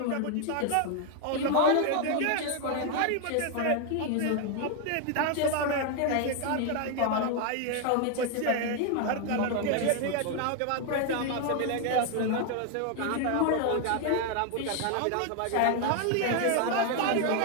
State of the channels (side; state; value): both; different; correlation 0.01